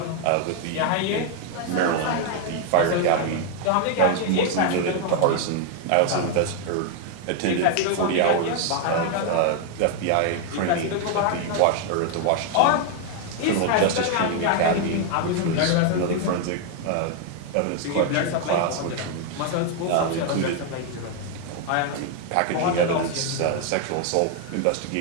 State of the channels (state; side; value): different; both; correlation 0.00